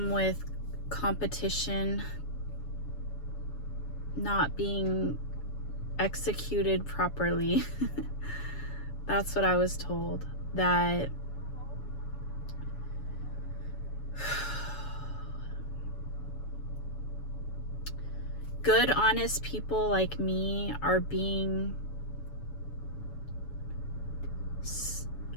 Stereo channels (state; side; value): late; right; 7.1 ms